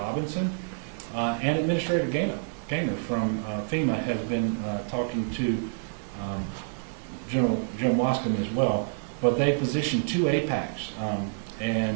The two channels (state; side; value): silent; left; digital silence